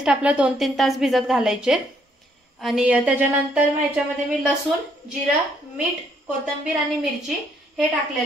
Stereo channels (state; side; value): normal; both; correlation 0.69